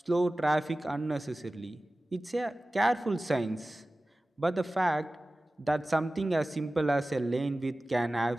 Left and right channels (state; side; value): normal; both; correlation 0.97